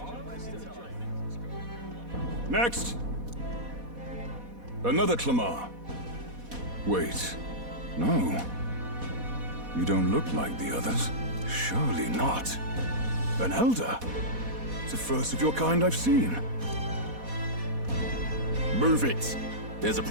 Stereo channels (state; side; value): late; left; 4.1 ms